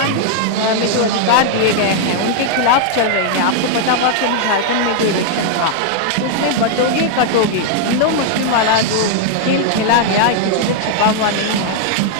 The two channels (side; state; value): both; different; correlation 0.00